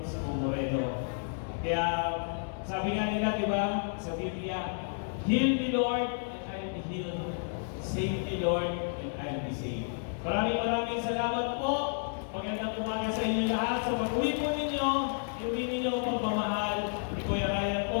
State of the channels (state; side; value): silent; right; digital silence